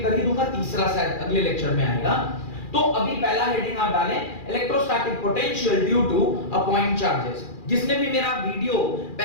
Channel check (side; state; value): right; late; 2.4 ms